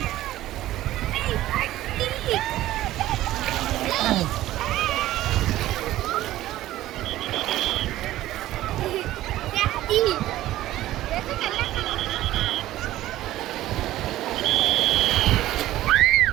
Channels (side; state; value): left; quieter; 14.9 dB